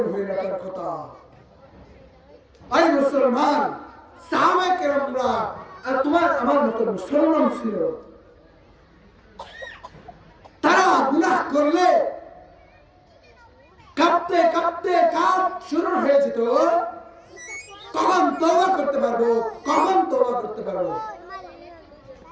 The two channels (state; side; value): identical; both; correlation 1.00